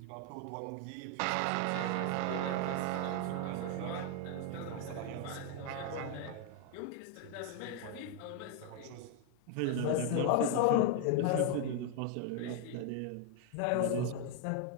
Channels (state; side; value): different; both; correlation 0.01